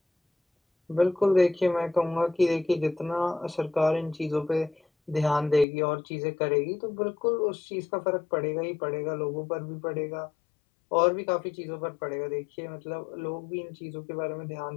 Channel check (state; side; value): drops out; right; at 5.7 s